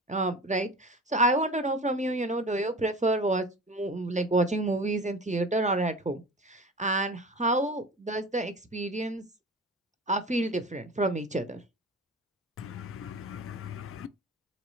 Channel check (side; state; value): both; normal; correlation 0.36